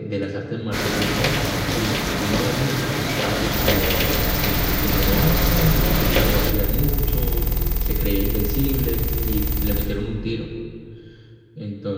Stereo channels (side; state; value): both; identical; correlation 1.00